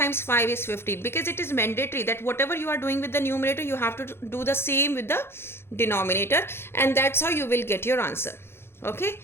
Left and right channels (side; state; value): right; late; 0.12 ms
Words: 5 is 15, because it is mandatory that whatever you are doing with the numerator, you have to do the same with the denominator, and that's how you will get your answer. Okay,